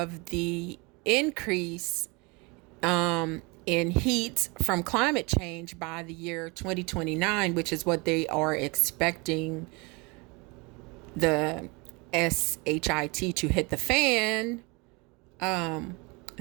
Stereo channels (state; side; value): quieter; left; 27.9 dB